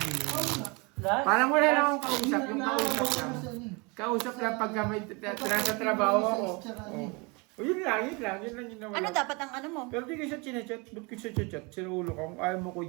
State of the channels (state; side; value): quieter; left; 29.0 dB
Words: Parang wala lang akong kausap, yung kausap lang. Kausap lang pagka may nasa trabaho ako. O yun lang yung nawala. Ano dapat ang ano mo? Pero di ko siya chinachat, ba't ko siya chat? Sinuulo ko, kung ayaw mo ko